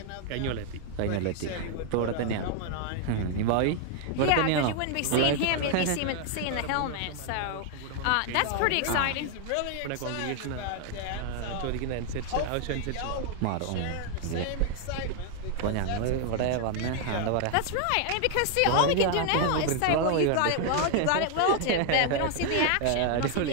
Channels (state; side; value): different; both; correlation 0.00